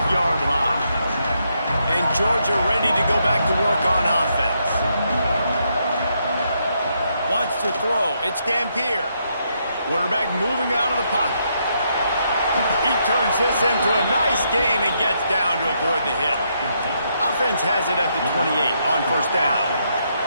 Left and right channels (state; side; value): inverted; both; correlation -0.77